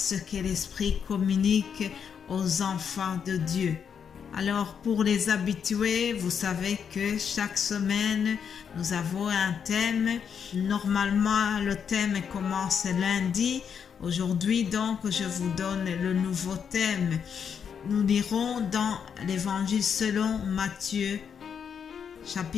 que l'Esprit communique aux enfants de Dieu. Alors pour les habitués, vous savez que chaque semaine, nous avons un thème. Normalement, le thème commence lundi. Aujourd'hui, donc, je vous donne le nouveau thème. Nous lirons dans l'Évangile selon Matthieu,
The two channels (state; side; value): quieter; right; 7.3 dB